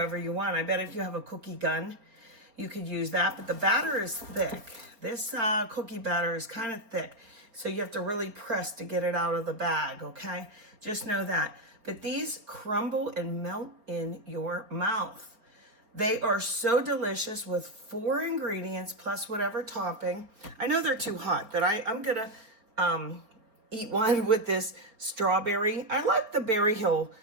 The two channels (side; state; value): left; late; 4.3 ms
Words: you want. I bet if you have a cookie gun, you could use that, but the batter is thick. This cookie batter is kind of thick, so you have to really press to get it out of the bag, okay? Just know that. But these crumble and melt in your mouth. They are so delicious with 4 ingredients plus whatever topping. I know they're too hot, but I'm gonna eat one with this strawberry. I like the Berry Hill